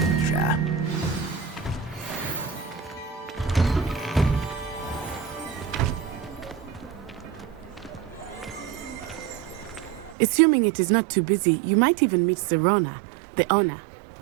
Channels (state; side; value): drops out; left; at 10.2 s